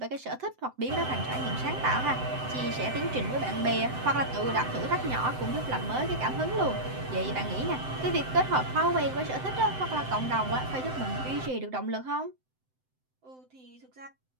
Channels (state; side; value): late; left; 7.8 ms